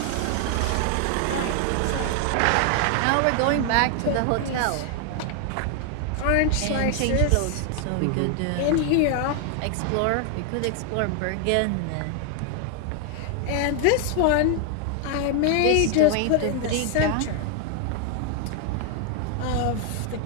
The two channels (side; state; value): both; different; correlation 0.00